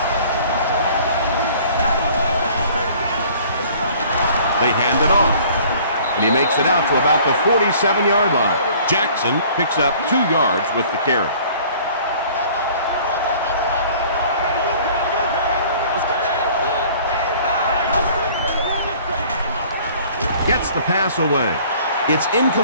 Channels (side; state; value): both; inverted; correlation -0.52